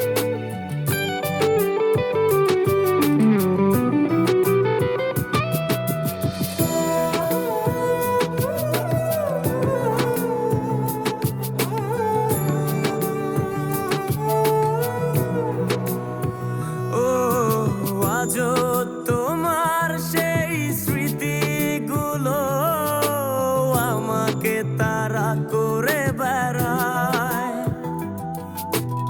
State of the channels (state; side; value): identical; both; correlation 1.00